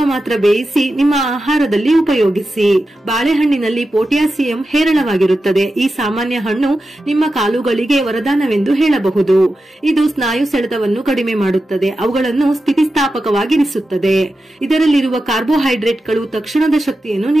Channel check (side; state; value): both; normal; correlation 0.91